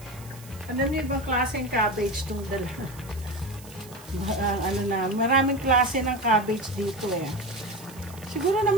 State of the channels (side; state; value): right; noise; hiss, 20 dB below the sound